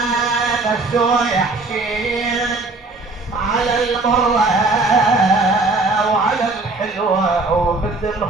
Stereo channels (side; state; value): left; quieter; 3.3 dB